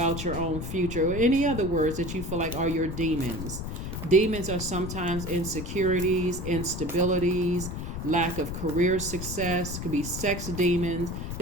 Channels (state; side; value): noise; left; rumble, 6 dB below the sound